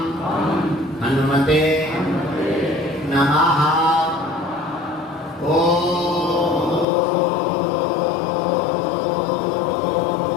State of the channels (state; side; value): drops out; right; at 6.9 s